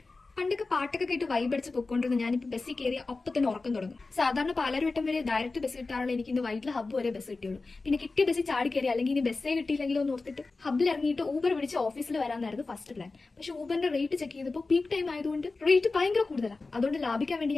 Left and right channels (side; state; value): right; quieter; 3.7 dB